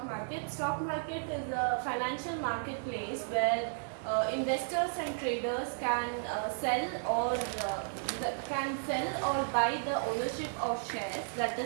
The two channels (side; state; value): left; silent; digital silence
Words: a financial marketplace where investors and traders can sell or buy the ownership of shares, that